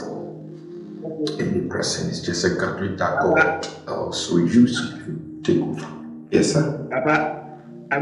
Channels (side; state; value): both; identical; correlation 1.00